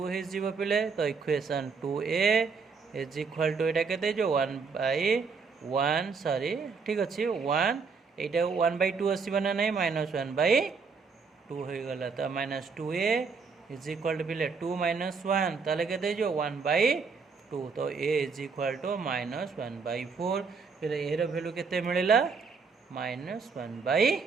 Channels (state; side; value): quieter; left; 5.1 dB